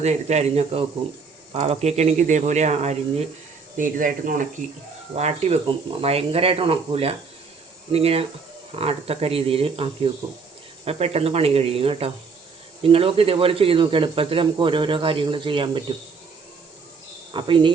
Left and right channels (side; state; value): left; quieter; 5.0 dB